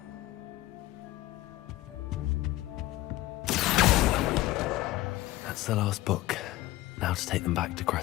That's the last book. Now to take them back to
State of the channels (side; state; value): right; quieter; 17.3 dB